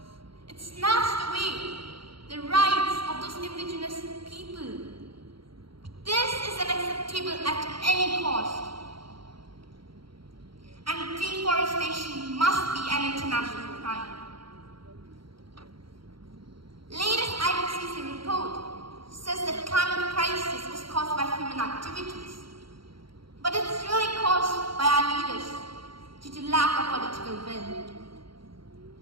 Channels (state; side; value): late; left; 0.74 ms